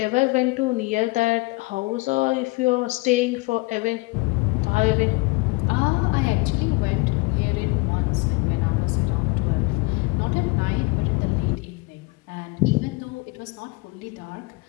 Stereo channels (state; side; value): quieter; right; 25.3 dB